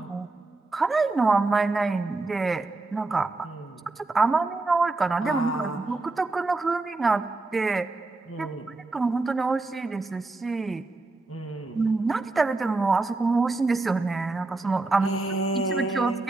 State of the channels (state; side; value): quieter; left; 3.4 dB